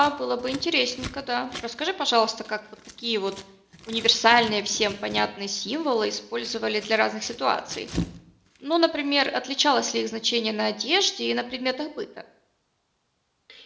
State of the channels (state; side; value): identical; both; correlation 1.00